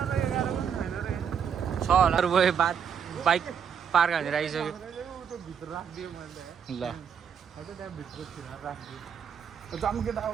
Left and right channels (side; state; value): left; quieter; 7.6 dB